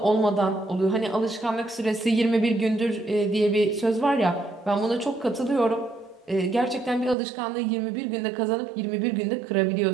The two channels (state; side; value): drops out; left; at 7.2 s